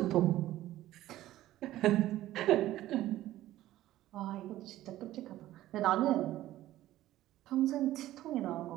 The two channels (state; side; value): quieter; left; 14.6 dB